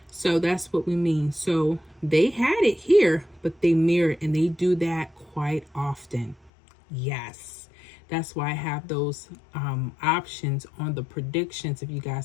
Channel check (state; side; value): drops out; right; at 6.5 s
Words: so that's what we mean. So they had it here, but they mirrored, and they do that quite often. Yes, that's why I have those options on the predictions. If you